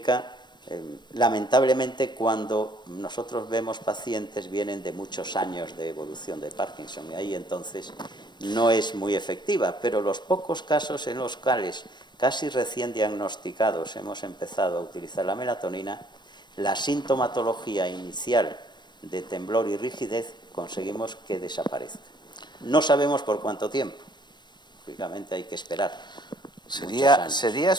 lamentablemente, cuando nosotros vemos pacientes, vienen de muchos años de evolución de Parkinson, y ahí entonces no es muy efectiva, pero los pocos casos en los cuales casi recién diagnosticados hemos empezado a utilizar la melatonina, la sintomatología inicial de temblor y rigidez conseguimos que desaparezca. No sabemos por cuánto tiempo, lógicamente hay que esperar. Sería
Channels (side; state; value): right; late; 0.22 ms